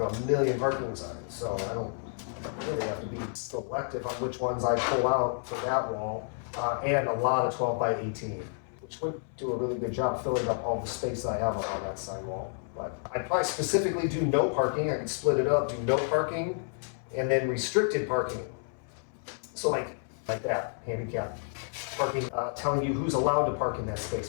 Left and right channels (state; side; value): silent; right; 57 dB below the other